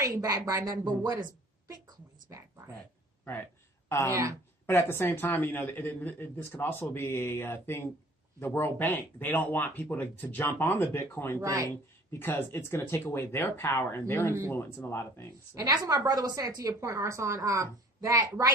ain't backed by nothing. But what is Bitcoin's backed by? Right. Yeah. But at the same time, this could also be a thing. The World Bank, they don't want people to jump on the Bitcoin thing because it's going to take away their power and their influence in a lot of things. So. And that's what my brother was saying to your point, Arson, that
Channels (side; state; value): both; normal; correlation 0.51